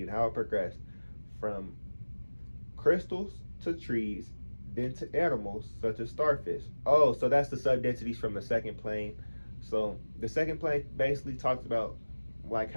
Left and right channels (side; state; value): both; inverted; correlation -1.00